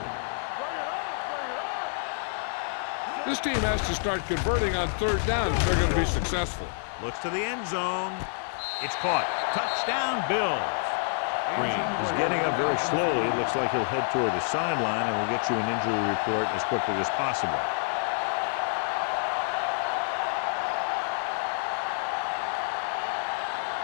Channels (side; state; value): right; silent; digital silence